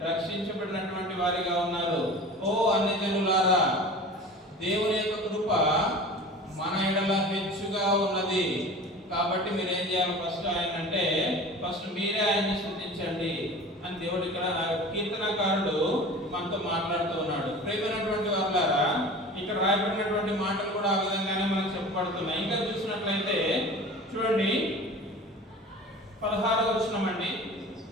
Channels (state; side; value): normal; both; correlation 0.38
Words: రక్షించబడినటువంటి వారిగా ఉన్నారు. ఓ అన్యజనులారా, దేవుని యొక్క కృప మన ఎడల హెచ్చుగా ఉన్నది. కాబట్టి మీరు ఏం చేయాలి? ఫస్ట్ మీరే ఆయన్ని స్తుతించండి అని దేవుడు ఇక్కడ కీర్తనకారుడు మనతో మాట్లాడుతూ ఉన్నాడు. ప్రియమైనటువంటి వారులారా, ఇక్కడ రాయబడినటువంటి మాటలు కూడా ఆ విధంగానే మనకు చెప్పబడుతున్నాయి. ఇంకా చూసినట్లయితే చూడండి 16వ వచనం అండి.